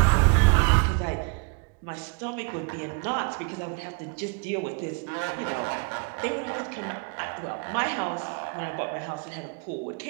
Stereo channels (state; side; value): quieter; left; 32.6 dB